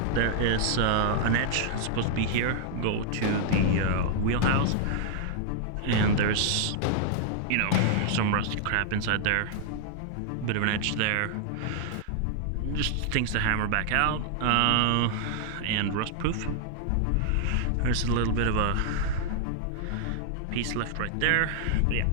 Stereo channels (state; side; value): different; both; correlation 0.00